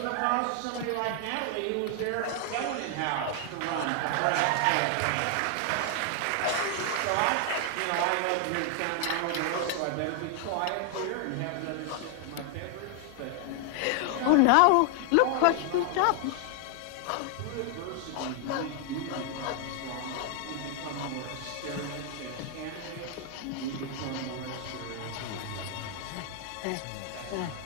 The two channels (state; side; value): different; both; correlation 0.00